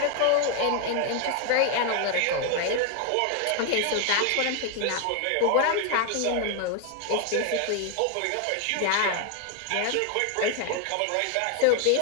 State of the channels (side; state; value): both; different; correlation 0.01